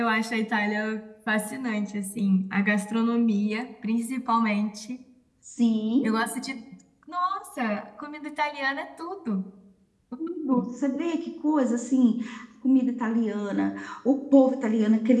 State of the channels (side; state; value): both; identical; correlation 1.00